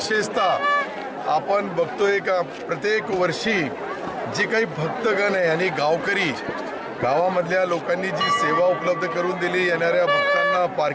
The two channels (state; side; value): identical; both; correlation 1.00